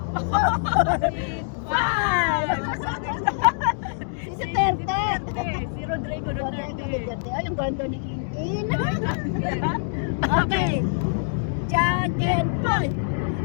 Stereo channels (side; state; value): right; silent; digital silence